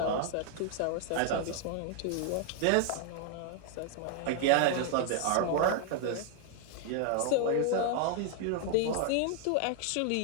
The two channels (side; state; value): both; different; correlation 0.00